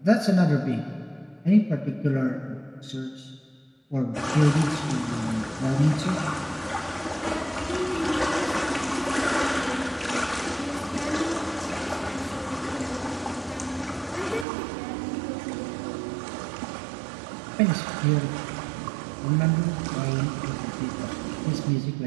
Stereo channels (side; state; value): left; drops out; at 14.5 s